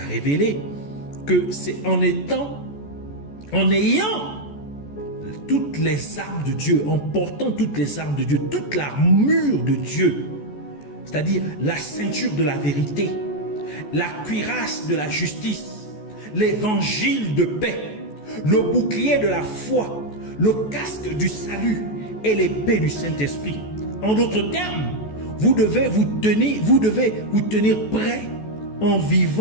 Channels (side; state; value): right; late; 14 ms